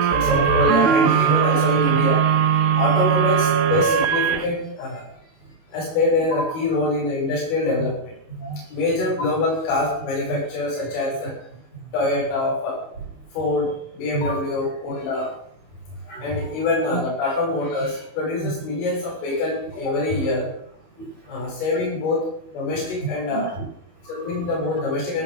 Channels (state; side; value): late; right; 19 ms